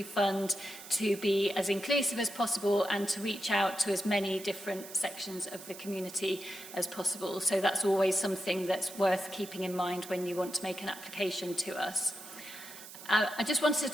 fund to be as inclusive as possible and to reach out to as many different sections of the community as possible. So that's always something that's worth keeping in mind when you want to make an application to us. I just wanted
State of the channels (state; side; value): noise; right; hiss, 14 dB below the sound